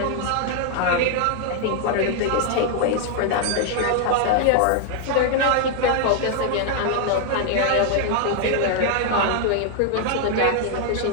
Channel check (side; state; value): both; different; correlation 0.00